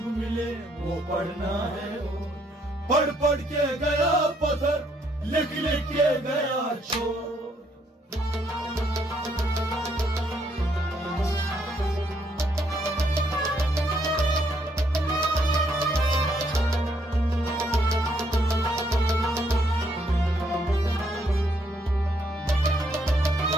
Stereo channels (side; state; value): both; normal; correlation 0.71